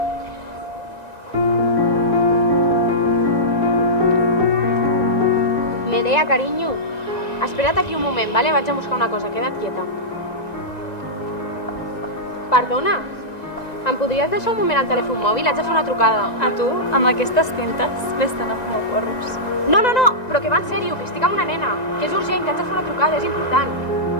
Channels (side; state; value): right; late; 1.9 ms